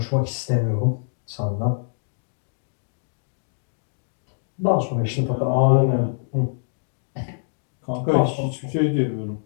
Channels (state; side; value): silent; right; digital silence